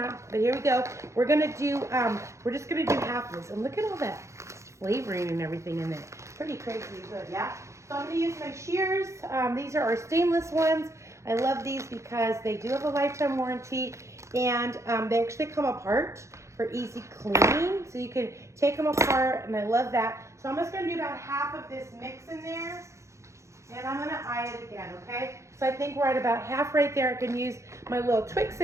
but here we go. We're gonna do, we're just gonna do half of this. And look at all that flavoring and everything in there. Pretty crazy good, yeah? So I'm gonna use my shears. These are our stainless ones. I love these because they do have a lifetime warranty, and they actually come apart for easy cleaning. So you can take them apart, and I love that. So I'm just gonna do about half of this mix in there, and I'm gonna eye it again, okay? So I think we're at about half right there. I can use my little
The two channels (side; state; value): left; late; 0.14 ms